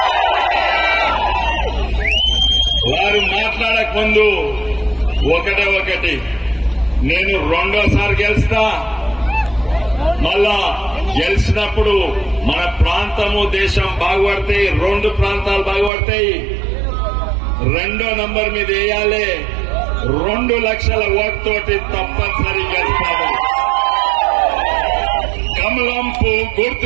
వారు మాట్లాడక ముందు ఒకటి నేను రెండోసారి గెలుస్తా, మళ్ళా గెలిచినప్పుడు మన ప్రాంతము దేశం బాగుపడతాయి, 2 ప్రాంతాలు బాగుపడతాయి. 2వ నంబర్ మీద వేయాలి, 2 లక్షల ఓటుతోటి తప్పనిసరి గెలుస్తాము. కమలంపు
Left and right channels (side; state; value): left; drops out; at 15.9 s